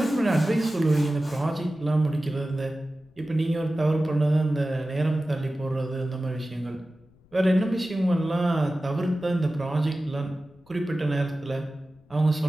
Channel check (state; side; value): noise; left; rumble, 30 dB below the sound